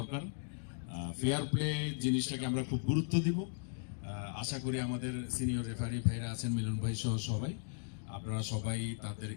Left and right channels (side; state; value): right; silent; digital silence